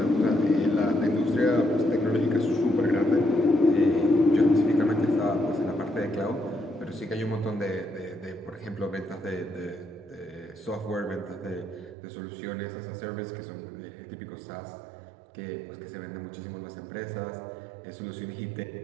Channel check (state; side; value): drops out; left; at 12.0 s